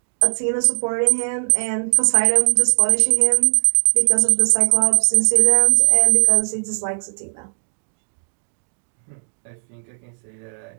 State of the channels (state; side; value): silent; left; digital silence